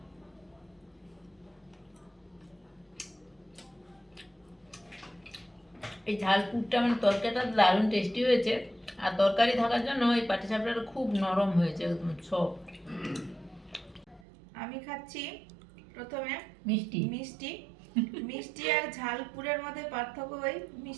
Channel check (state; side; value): drops out; left; at 14.2 s